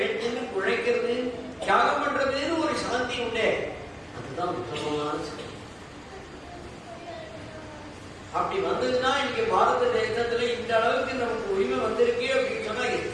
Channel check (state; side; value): identical; both; correlation 1.00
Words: உழைக்கிறது, தியாகம் பண்றதுன்னு ஒரு சாந்தி உண்டே, அதுதான் உத்தமமான சாந்தி. அப்படி வந்ததுன்னா இன்னைக்கு பாரத தேசத்துல இந்த அளவுக்கு நமக்கு உரிமை வந்திருக்கு அப்படின்னு சொன்னா